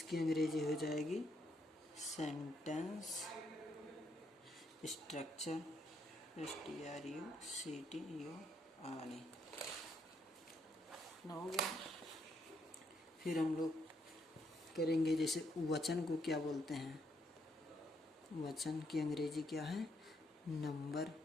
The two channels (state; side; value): normal; both; correlation 0.75